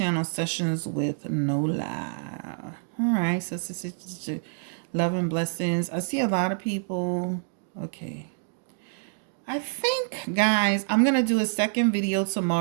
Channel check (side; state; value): left; silent; digital silence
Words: Sessions with Nola. All right. So, love and blessings. I see a lot of people. Okay. I think, guys, I'm going to do a second video